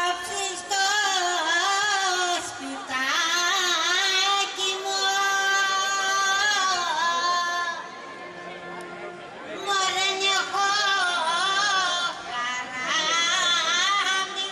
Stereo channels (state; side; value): identical; both; correlation 1.00